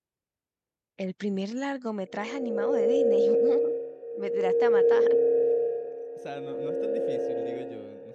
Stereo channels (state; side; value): identical; both; correlation 1.00